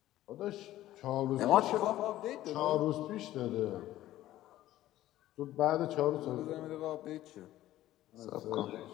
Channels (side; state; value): right; quieter; 14.4 dB